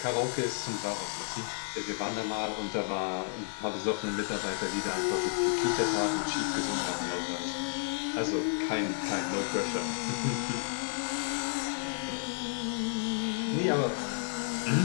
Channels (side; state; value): right; silent; digital silence